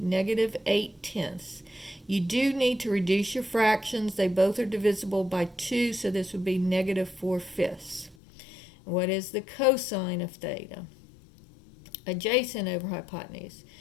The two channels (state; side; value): drops out; right; at 8.2 s